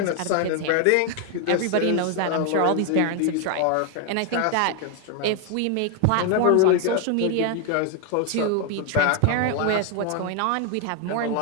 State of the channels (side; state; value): both; different; correlation 0.01